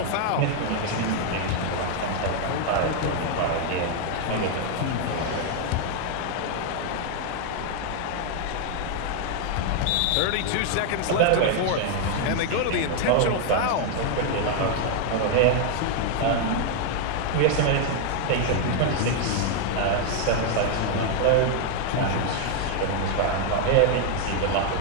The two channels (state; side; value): different; both; correlation 0.00